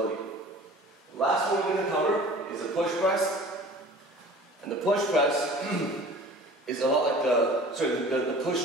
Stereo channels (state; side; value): normal; both; correlation 0.44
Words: The last one we're going to cover is the push press. And the push press is a lot like the